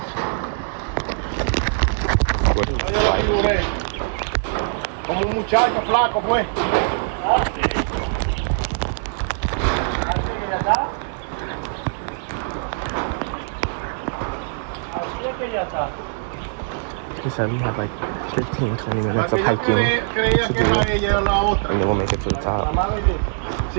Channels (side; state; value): left; silent; digital silence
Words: He said we have like 15-20 minutes of hiking to do, and then we'll make it to the top.